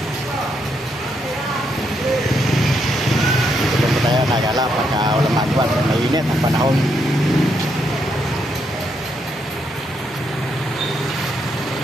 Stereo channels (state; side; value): normal; both; correlation 0.78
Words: Tayo nagala pagka walang magawa, mainit ang panahon.